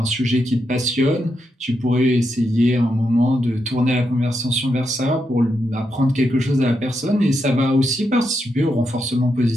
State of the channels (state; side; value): normal; both; correlation 0.83